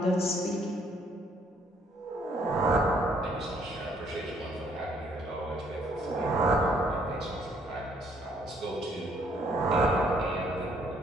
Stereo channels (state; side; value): normal; both; correlation 0.66